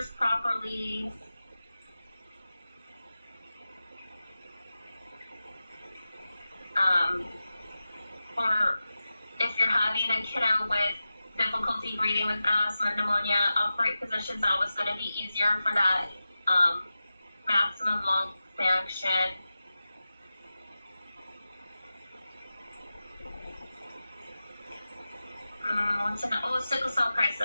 properly. For if you're having a kiddo with difficulty breathing with asthma, pneumonia, upright position is always going to be easier for that maximum lung function. Sickle cell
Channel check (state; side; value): inverted; both; correlation -0.94